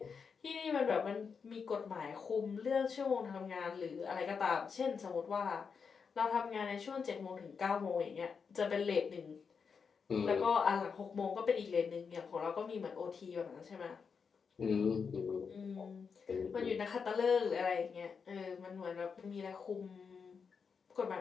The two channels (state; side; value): quieter; right; 5.8 dB